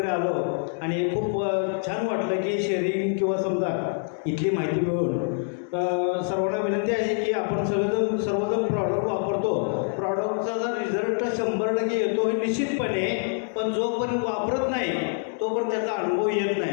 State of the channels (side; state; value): right; silent; 61 dB below the other